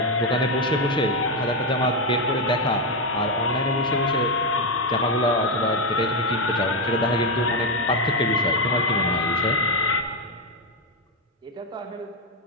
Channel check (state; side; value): normal; both; correlation 0.06